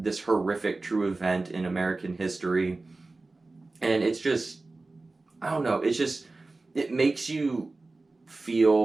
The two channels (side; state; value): left; quieter; 3.3 dB